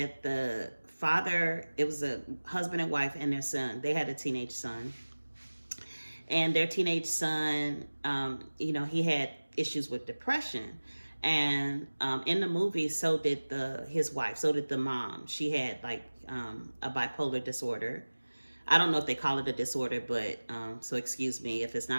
the father, it was a husband and wife and their son. They had a teenage son, and their teenage son, he had issues with depression. And in the movie, so did his wife, so did the mom. She had like a bipolar disorder. I don't know if they call it a disorder, but so excuse me if it's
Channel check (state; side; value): inverted; both; correlation -1.00